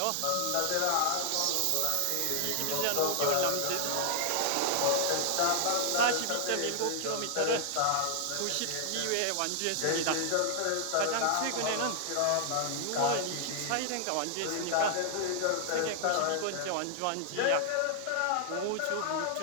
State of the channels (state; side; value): different; both; correlation 0.00